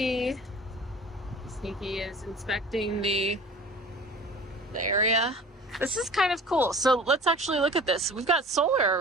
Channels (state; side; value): normal; both; correlation 0.43